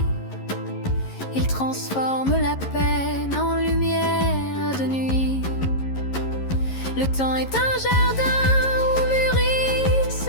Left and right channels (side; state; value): right; late; 11 ms